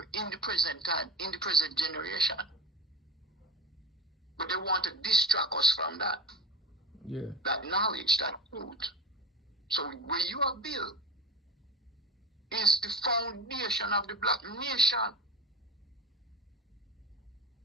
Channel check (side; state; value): both; normal; correlation 0.30